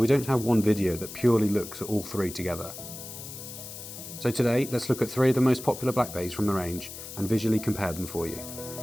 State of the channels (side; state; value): left; noise; hiss, 11 dB below the sound